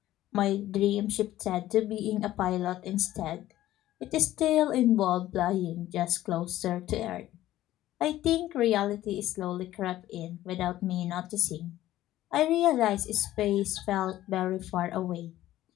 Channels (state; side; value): quieter; right; 14.4 dB